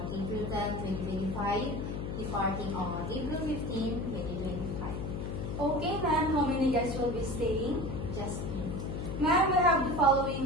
April 10, 2025, departing on April 15, 2025. Okay, ma'am. How many guests will be staying? Just me. Ma'am, we have the following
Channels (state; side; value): noise; left; hum, 4 dB below the sound